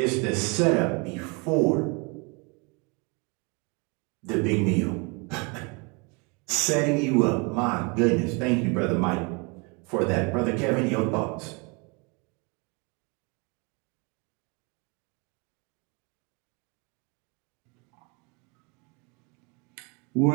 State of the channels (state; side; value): quieter; left; 31.0 dB